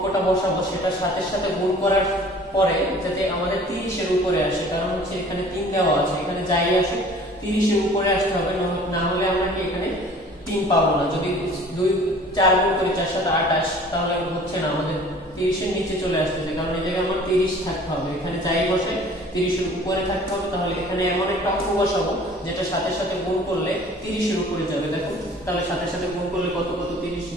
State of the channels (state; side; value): normal; both; correlation 0.49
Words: বসাবো সেটা সাথে সাথে গুণ করার পরে যাতে আমাদের 30 এর উপরে আসে। কারণ হচ্ছে এখানে 3 দেওয়া আছে, এখানে যাই আসে 30 এর উপরে আসতে হবে, না হলে আমরা কি এখানে 3 পাবো না। যদি 4 গুণ করি 4 7 28 তাহলে হচ্ছে না, আমাদের 30 এর নিচে চলে আসতেছে। কারণ এই জায়গায় আমার 30 থাকতে হবে, এখানে যাই বসে 30 এর উপরে থাকতে হবে। তাহলে এখানে এমন একটা অঙ্ক বসাবো যেটা সাথে সাথে গুণ করলে 30 এর উপরে যাবে। দেখো তাহলে সাথে সাথে গুণ করলে কত 30